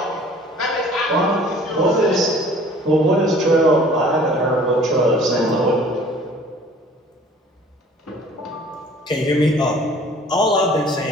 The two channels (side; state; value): both; normal; correlation 0.51